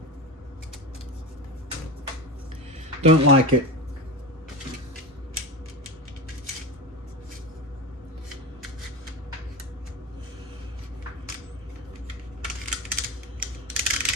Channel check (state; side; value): normal; both; correlation 0.22